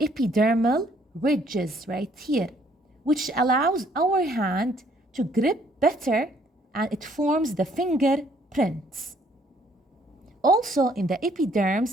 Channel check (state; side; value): normal; both; correlation 0.64